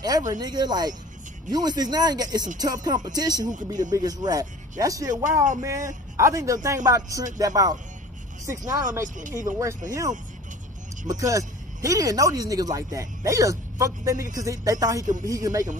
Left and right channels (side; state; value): both; normal; correlation 0.44